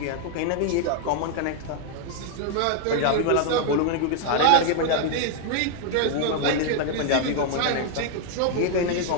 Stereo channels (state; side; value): different; both; correlation 0.00